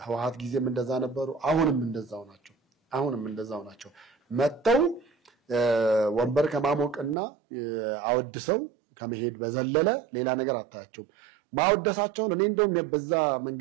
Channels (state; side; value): drops out; left; at 7.2 s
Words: ጊዜም እንደዛ ነበሩ አሁንም እንደዛው ናቸው መተው ወንበር ከማሞቅና አወድሰው ከመሄድ በዘለለ ሌላ ነገር አታያቸው ማወደሳቸውን እኔ እንደውም በዛ